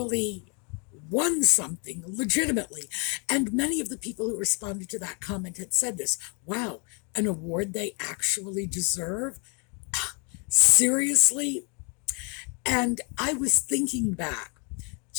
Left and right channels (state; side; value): quieter; right; 35.3 dB